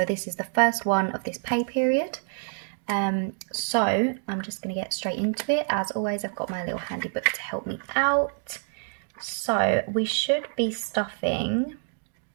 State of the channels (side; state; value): left; silent; 60 dB below the other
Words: this is the first one of this pay period. So I'm just going to get straight into it. As always, I've got my little handy book to help me out. So we should be stuffing